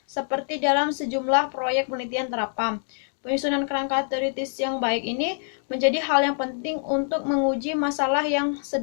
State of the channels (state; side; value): silent; right; digital silence